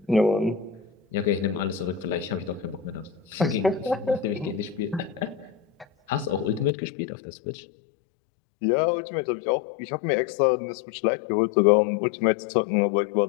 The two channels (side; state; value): right; drops out; at 6.7 s